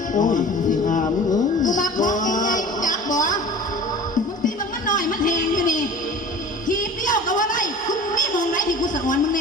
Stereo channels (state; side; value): normal; both; correlation 0.41